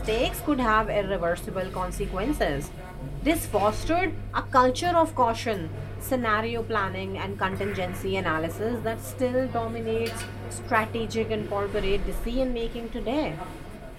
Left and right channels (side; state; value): both; identical; correlation 1.00